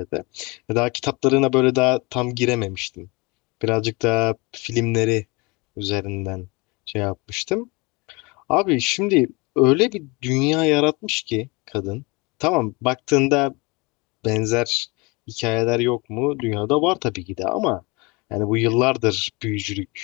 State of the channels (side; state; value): right; quieter; 26.8 dB